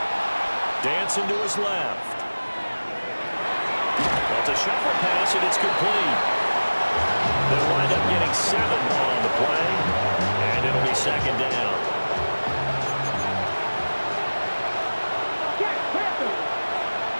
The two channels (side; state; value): both; inverted; correlation -1.00